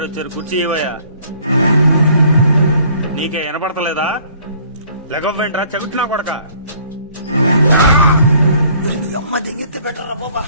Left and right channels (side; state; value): both; inverted; correlation -0.58